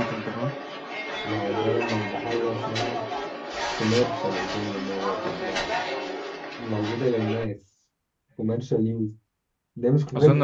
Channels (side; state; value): both; identical; correlation 1.00